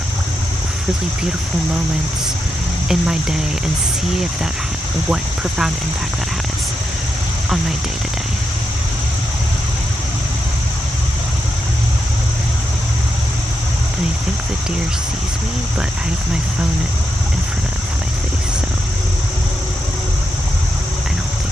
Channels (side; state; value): both; normal; correlation 0.85